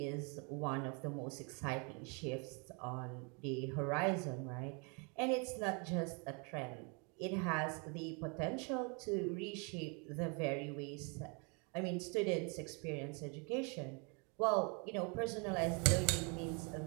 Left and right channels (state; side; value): quieter; left; 33.9 dB